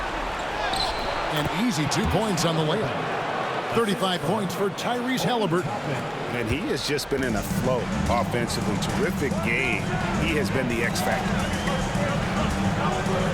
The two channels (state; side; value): identical; both; correlation 1.00